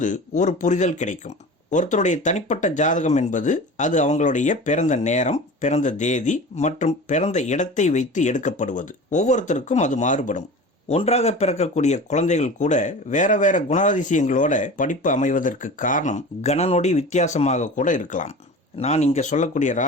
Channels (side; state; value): both; normal; correlation 0.36